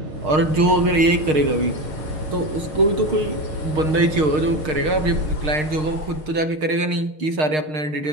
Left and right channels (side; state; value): left; late; 6.5 ms